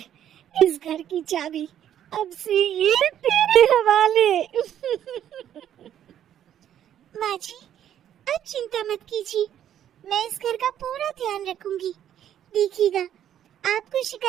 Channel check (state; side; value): quieter; left; 10.5 dB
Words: इस घर की चाबी, अब से ये तेरे हवाले। माँ जी, अब चिंता मत कीजिए, मैं इस घर का पूरा ध्यान रखूंगी। देखिएगा, आपको